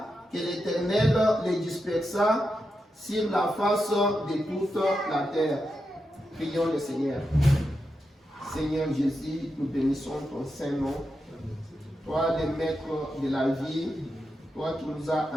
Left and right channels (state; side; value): normal; both; correlation 0.87